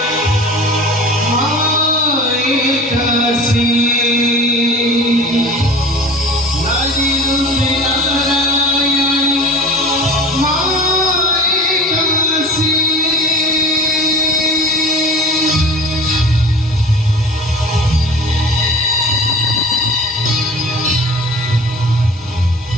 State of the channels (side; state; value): both; normal; correlation 0.38